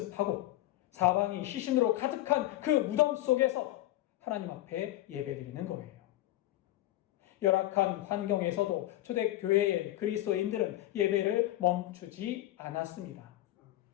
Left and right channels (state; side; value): quieter; right; 15.4 dB